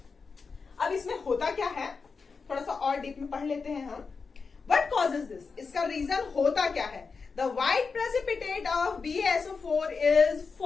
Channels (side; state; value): right; quieter; 4.9 dB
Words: अब इसमें होता क्या है, थोड़ा सा और डीप में पढ़ लेते हैं हम। What causes this? इसका रीजन होता क्या है। The white precipitate of BaSO4 is